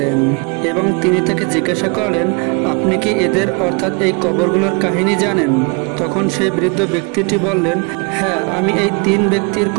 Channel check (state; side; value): quieter; left; 33.6 dB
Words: এবং তিনি তাকে জিজ্ঞাসা করলেন, আপনি কি এদের অর্থাৎ এই কবরগুলোর কাহিনী জানেন? তখন সেই বৃদ্ধ ব্যক্তিটি বললেন, হ্যাঁ, আমি এই তিন ব্যক্তির